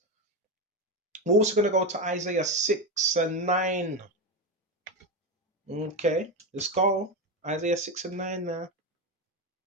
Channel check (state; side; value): normal; both; correlation 0.14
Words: We're also going to go to Isaiah 6 and 9. Okay, let's go. Isaiah 6 and 9 now.